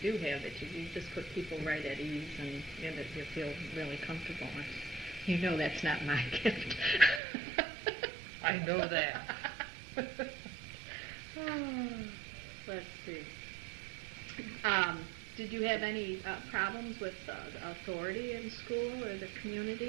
do have, that you just put people right at ease and that you feel really comfortable. That's not my gift. I know that. Let's see. Did you have any problems with authority in school or the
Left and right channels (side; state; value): left; drops out; at 7.2 s